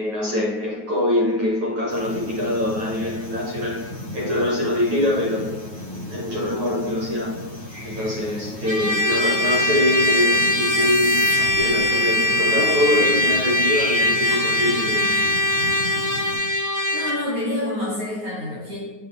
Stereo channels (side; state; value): left; late; 9.3 ms